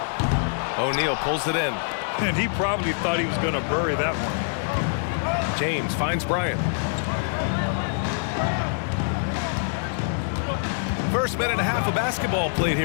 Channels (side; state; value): right; silent; digital silence